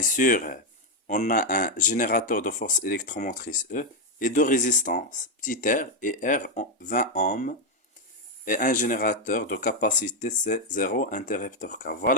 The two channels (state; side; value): normal; both; correlation 0.03